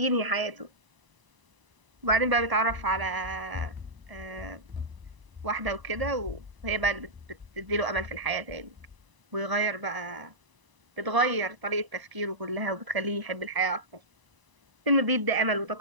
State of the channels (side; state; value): left; late; 1.0 ms